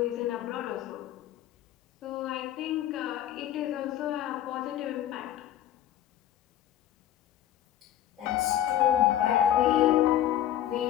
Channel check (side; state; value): right; quieter; 11.8 dB